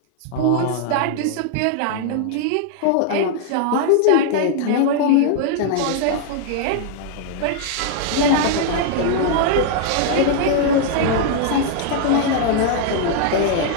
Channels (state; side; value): different; both; correlation 0.00